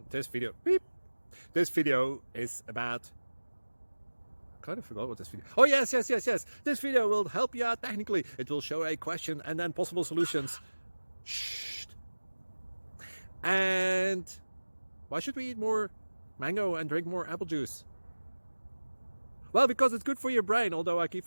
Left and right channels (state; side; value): inverted; both; correlation -1.00